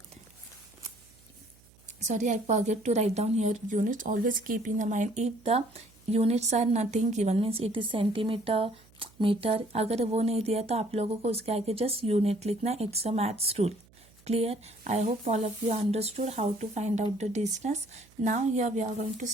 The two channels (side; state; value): right; noise; hum, 28 dB below the sound